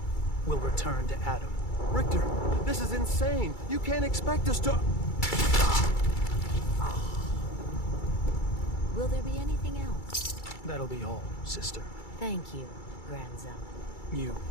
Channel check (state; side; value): late; right; 2.3 ms